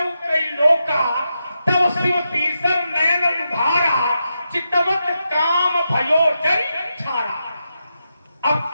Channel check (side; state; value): both; inverted; correlation -0.87